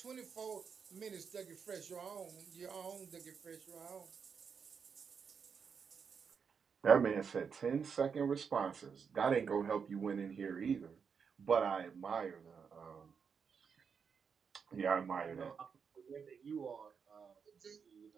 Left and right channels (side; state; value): left; quieter; 6.3 dB